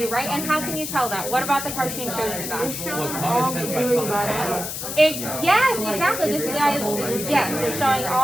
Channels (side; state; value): left; noise; hiss, 6 dB below the sound